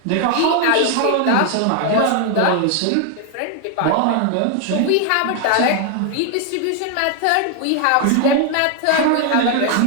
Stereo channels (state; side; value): different; both; correlation 0.00